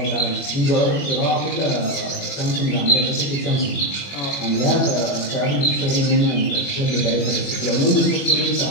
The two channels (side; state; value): right; late; 21 ms